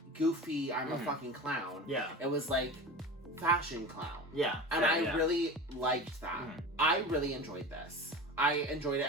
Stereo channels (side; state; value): both; normal; correlation 0.32